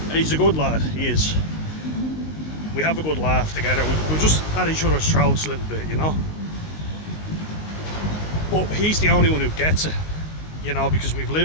He's a good lad, he is. We have a good laugh together. We're just at each other's throats a little bit, you know. But he's the only one who gets it, you know, because we've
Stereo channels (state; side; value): late; right; 19 ms